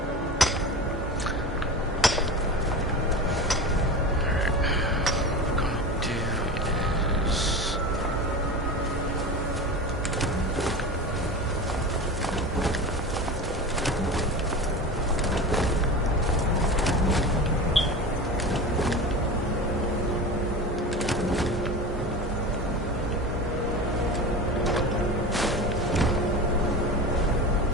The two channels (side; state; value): both; normal; correlation 0.29